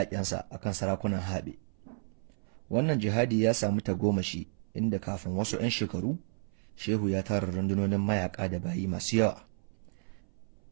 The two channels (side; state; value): left; silent; 57 dB below the other